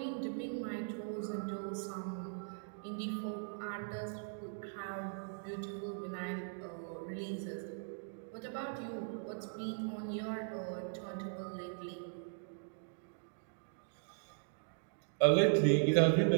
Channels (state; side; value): silent; left; digital silence